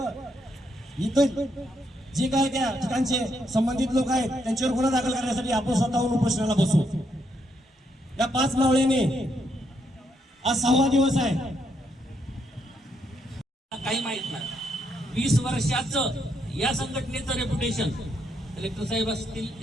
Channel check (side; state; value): both; normal; correlation 0.77